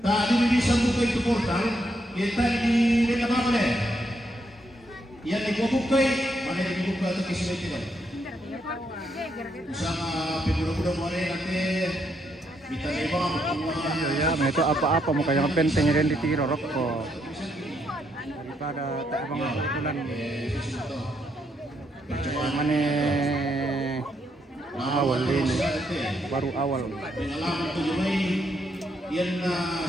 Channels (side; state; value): both; normal; correlation 0.76